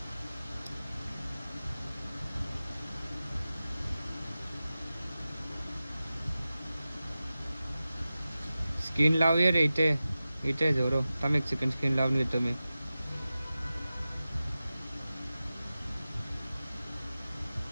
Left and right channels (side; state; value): both; inverted; correlation -0.95